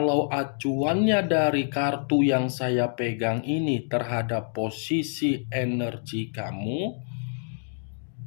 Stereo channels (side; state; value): right; silent; digital silence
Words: acuannya dari kartu yang saya pegang ini terhadap posisi energi kamu,